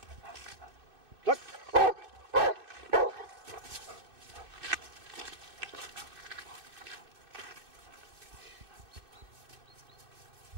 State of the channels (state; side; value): late; left; 2.6 ms